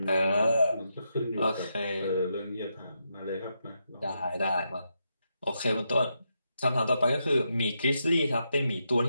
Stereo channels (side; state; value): both; inverted; correlation -0.83